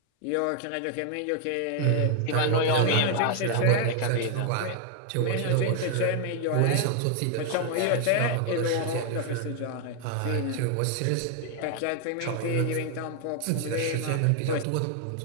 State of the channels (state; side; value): different; both; correlation 0.00